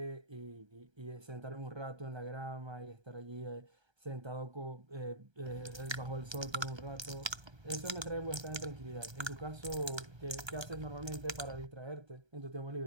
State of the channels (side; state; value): left; late; 1.3 ms